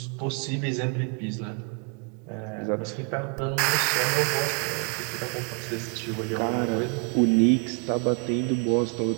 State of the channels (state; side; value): quieter; left; 37.6 dB